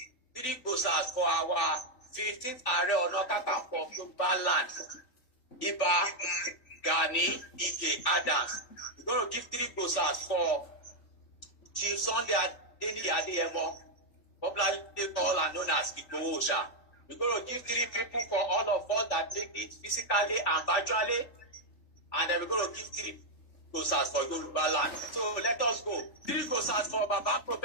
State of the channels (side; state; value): right; late; 3.5 ms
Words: 3 glosars for our 15th Ààrẹ Ọ̀nà Kakanfò of Yoruba land, Iba Gani Ige Adams. We're going to give 3 glosars for Chief Sunday Adeniyi Adeyemo, popularly called and known as Igboho Oòṣà. We're going to give 3 people for all of us that take it physically and virtually, and then we're going to give 3 glosars for Yoruba land. So let us go. 3 glosars for Baba